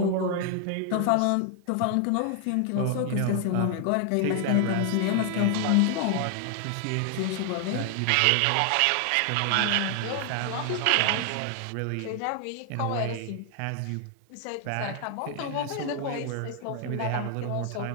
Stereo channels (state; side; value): different; both; correlation 0.00